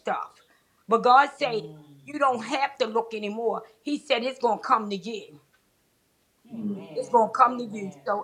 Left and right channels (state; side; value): identical; both; correlation 1.00